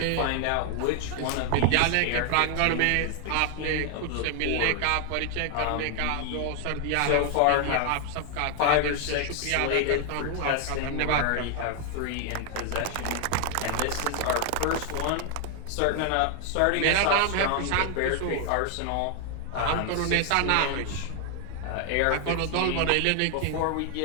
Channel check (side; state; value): both; different; correlation 0.00